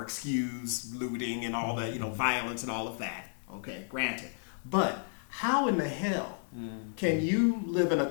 excuse looting and all that, violence and all of that. Okay, granted. But how in the hell can you live in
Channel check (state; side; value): silent; right; digital silence